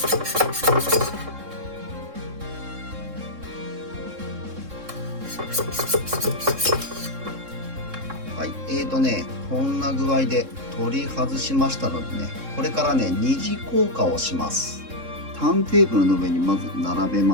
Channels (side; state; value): left; late; 3.7 ms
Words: はい、こんな具合で取り外しましたのでね、これからね二次硬化をします。ターンテーブルの上にまず並べ